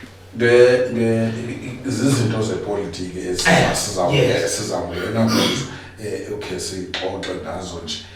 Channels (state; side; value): identical; both; correlation 1.00